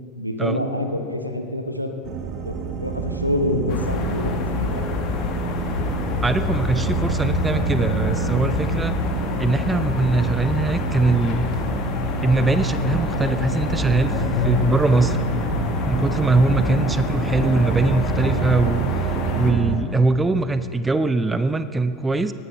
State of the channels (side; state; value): both; normal; correlation 0.53